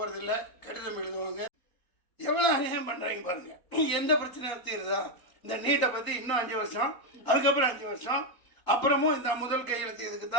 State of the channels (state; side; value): late; right; 4.2 ms